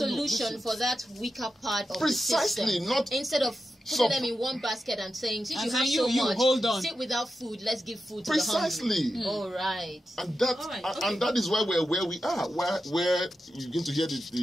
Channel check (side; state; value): both; normal; correlation 0.90